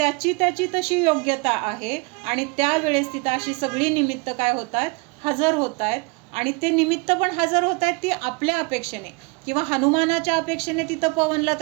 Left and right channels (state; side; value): quieter; left; 29.0 dB